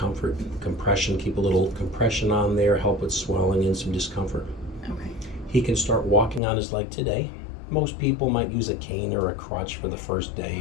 compression, keep a little compression on there, help with swelling and some discomfort. Okay. He can start walking on his leg today. Most people might use a cane or a crutch for the first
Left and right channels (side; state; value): right; drops out; at 6.4 s